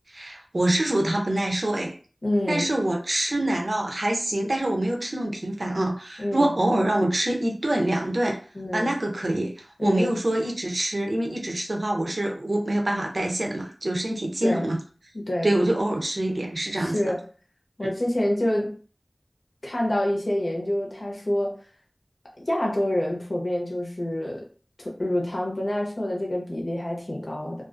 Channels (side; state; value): both; normal; correlation 0.98